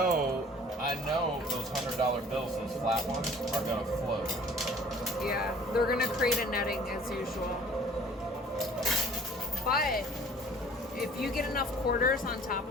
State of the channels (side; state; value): both; normal; correlation 0.51